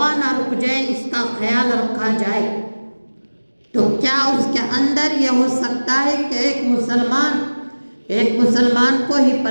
نہ رک جائے، اس کا خیال رکھا جائے، تو کیا اس کے اندر یہ ہو سکتا ہے کہ ایک مسلمان کو ہی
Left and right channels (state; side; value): inverted; both; correlation -1.00